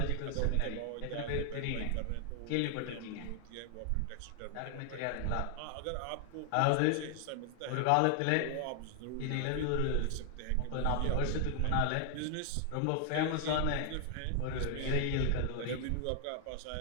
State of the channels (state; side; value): different; both; correlation 0.00